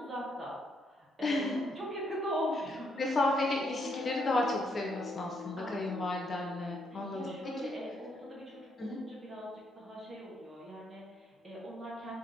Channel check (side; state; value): both; normal; correlation 0.74